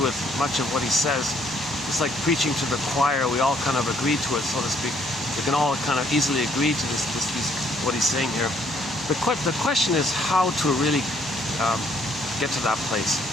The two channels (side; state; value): both; normal; correlation 0.67